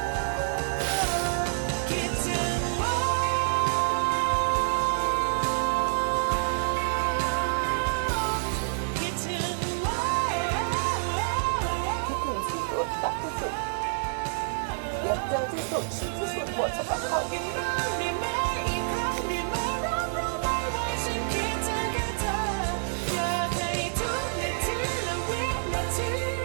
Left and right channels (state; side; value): silent; left; 59 dB below the other